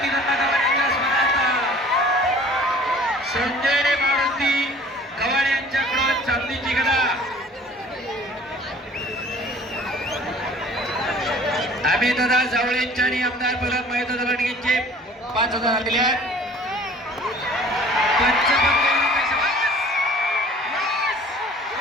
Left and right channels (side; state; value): both; normal; correlation 0.49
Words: दत्ता गव्हाणे यांच्या स्मरणार्थ संजय मारुती गव्हाणे यांच्याकडून चांदीची गदा. आम्ही दादा जावळेंच्या आणि आमदार प्रल्हाद महेंद्र लांडगेंचे 5,000 दिले आहेत.